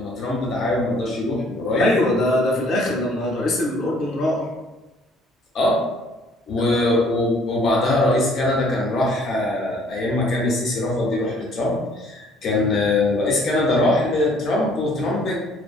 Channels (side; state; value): both; normal; correlation 0.59